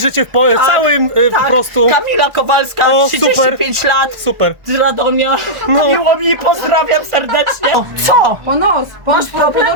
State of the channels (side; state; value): left; late; 1.4 ms